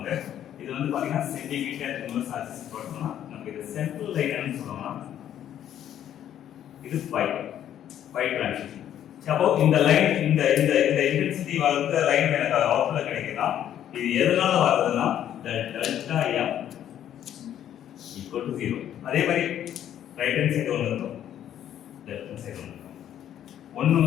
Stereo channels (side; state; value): right; quieter; 10.7 dB